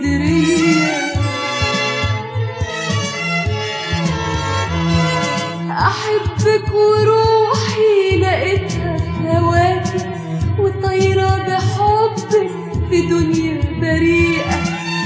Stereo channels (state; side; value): identical; both; correlation 1.00